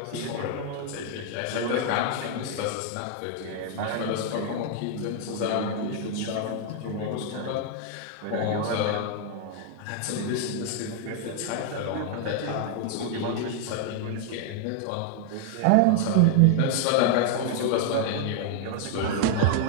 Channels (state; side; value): different; both; correlation 0.00